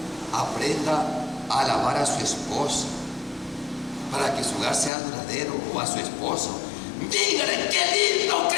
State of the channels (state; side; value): drops out; right; at 4.9 s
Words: aprenda a alabar a su esposa para que su hogar sea duradero, o a su esposo. Dígale: qué lindo